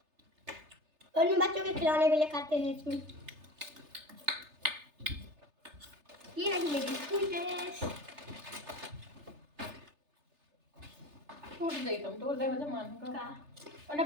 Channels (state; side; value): late; left; 3.3 ms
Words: और बच्चों के खिलौने भी ले खाते हैं इसमें। ये रही मेरी स्कूल ड्रेस। टूट गई, तुम तोड़ दे वजह मान का, और ना